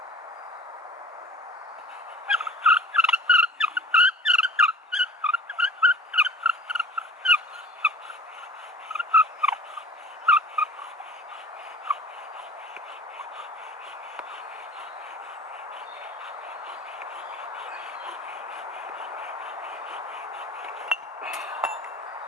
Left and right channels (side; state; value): both; normal; correlation 0.44